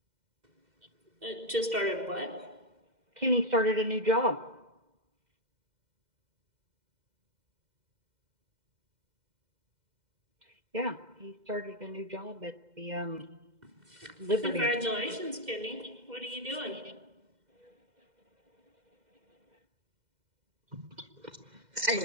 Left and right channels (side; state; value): left; late; 2.0 ms